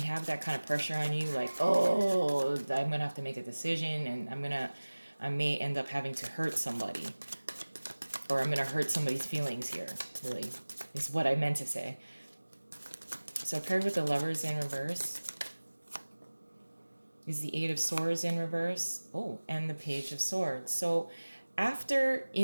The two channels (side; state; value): both; inverted; correlation -1.00